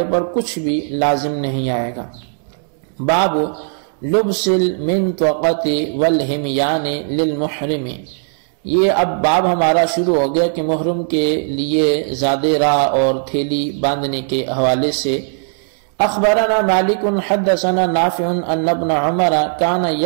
پر کچھ بھی لازم نہیں آئے گا. باب لبس المنطقۃ والہمیان للمحرم. یہ اب باب ہمارا شروع ہو گیا کہ محرم کے لیے زادِ راہ اور تھیلی باندھنے کے حوالے سے. اخبرنا مالک حدثنا نافع ان ابن عمر کان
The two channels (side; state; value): left; silent; digital silence